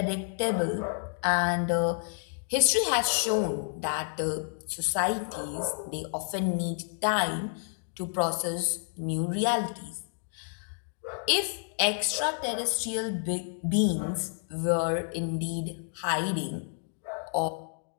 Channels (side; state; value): right; silent; 58 dB below the other